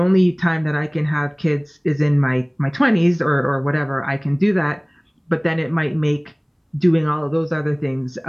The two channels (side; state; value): both; identical; correlation 1.00